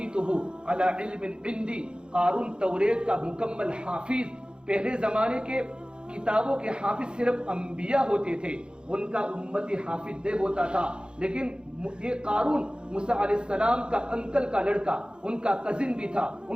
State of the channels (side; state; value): left; late; 0.051 ms